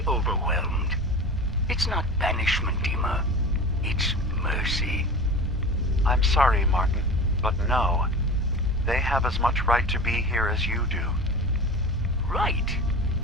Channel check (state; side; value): normal; both; correlation 0.32